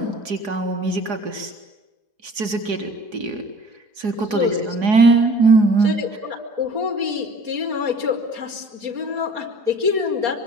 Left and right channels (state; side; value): late; left; 4.8 ms